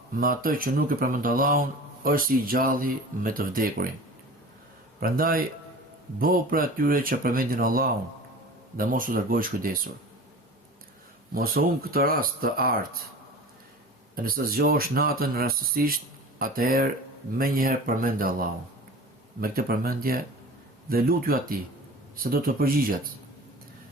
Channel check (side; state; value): both; normal; correlation 0.37